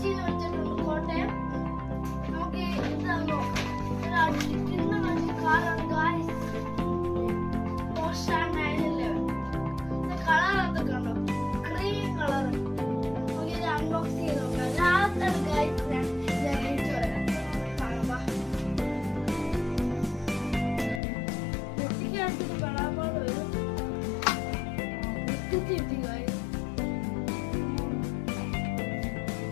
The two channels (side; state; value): right; drops out; at 21.0 s